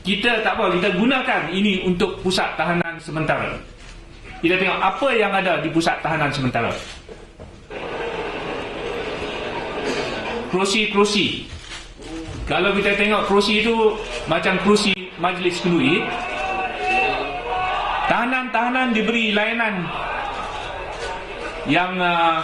Kita tak apa, kita gunakan ini untuk pusat tahanan sementara. Kita tengok apa yang ada di pusat tahanan sementara. Kerusi-kerusi. Kalau kita tengok kerusi itu macam kerusi majlis kenduri. Tahanan-tahanan diberi layanan yang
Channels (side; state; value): both; identical; correlation 1.00